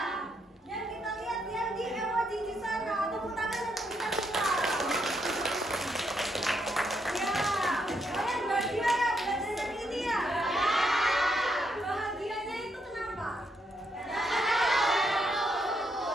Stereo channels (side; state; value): both; normal; correlation 0.77